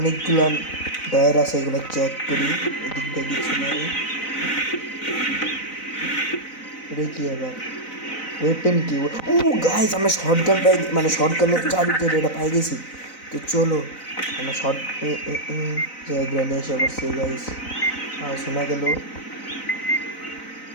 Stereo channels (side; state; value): right; late; 4.0 ms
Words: ডয়ার আছে, এগুলো চেক করি। এদিক দিয়ে কিছু নাই, এটা কি আবার ওয়েপেন কি, ও গাইস আমরা শর্টগান পাই, মানে শর্টগানের চাবি তো এটা পাই গেছি। তো চলো আমরা শর্ট গ্রানে এসে বসছে গাইস, শোনা গেল।